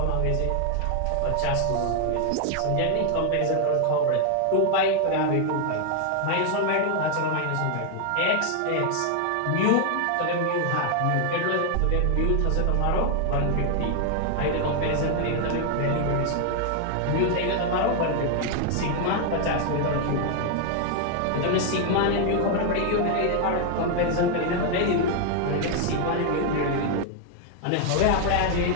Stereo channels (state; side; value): different; both; correlation 0.00